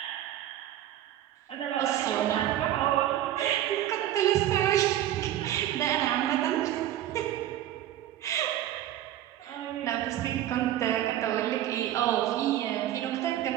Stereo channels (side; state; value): left; quieter; 12.6 dB